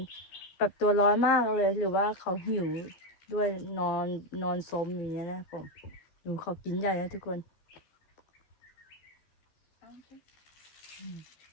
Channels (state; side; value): late; right; 14 ms